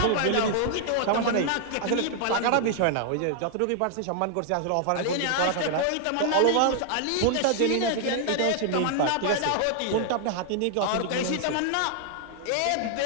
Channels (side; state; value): both; different; correlation 0.00